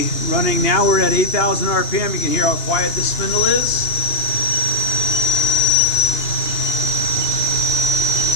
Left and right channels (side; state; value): right; late; 2.9 ms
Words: running now. We're at 8,000 RPM. You can hear how quiet this spindle is.